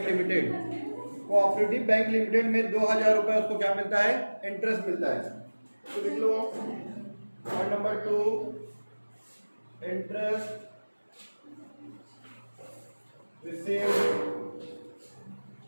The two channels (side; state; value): both; inverted; correlation -1.00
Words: limited, cooperative bank limited में 2,000 रुपये उसको क्या मिलता है, इंटरेस्ट मिलता है। तो लिख लो point number 2, interest received